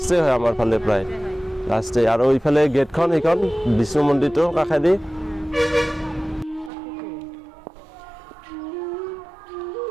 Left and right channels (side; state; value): left; drops out; at 6.7 s